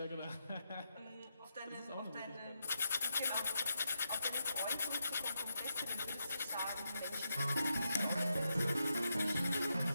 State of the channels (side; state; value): both; inverted; correlation -0.84